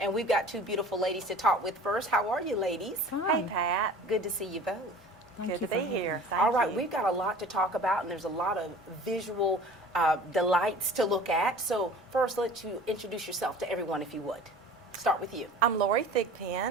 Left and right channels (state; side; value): normal; both; correlation 0.43